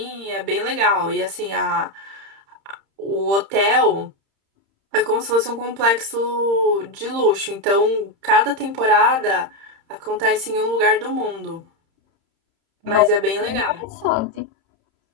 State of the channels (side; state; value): left; late; 30 ms